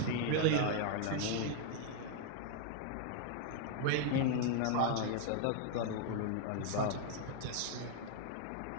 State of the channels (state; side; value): different; both; correlation 0.00